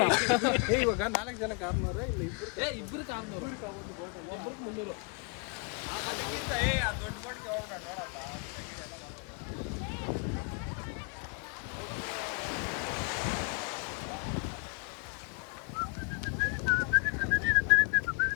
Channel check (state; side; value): quieter; right; 33.6 dB